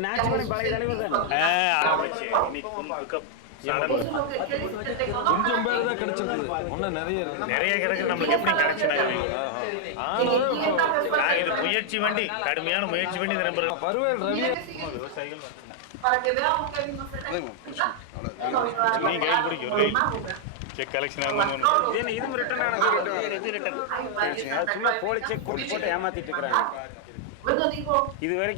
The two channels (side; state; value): both; different; correlation 0.00